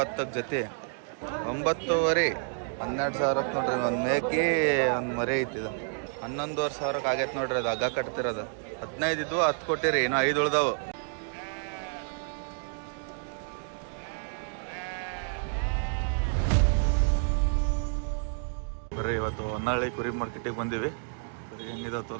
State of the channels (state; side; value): silent; left; 58 dB below the other